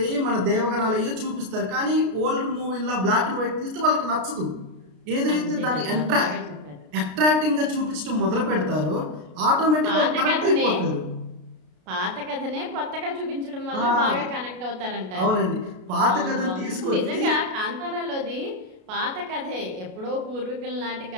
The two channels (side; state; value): left; late; 33 ms